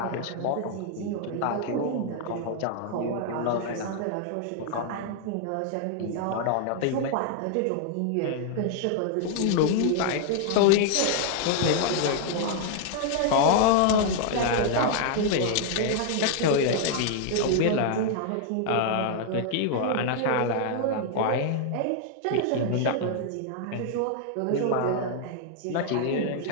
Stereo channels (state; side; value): different; both; correlation 0.00